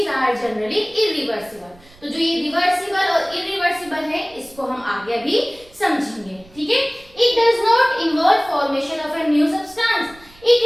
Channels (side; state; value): right; noise; rumble, 26 dB below the sound